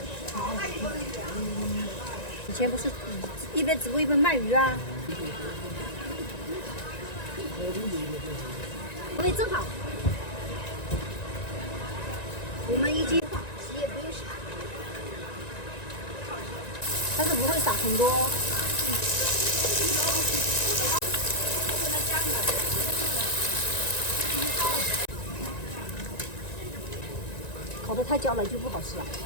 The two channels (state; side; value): late; right; 1.9 ms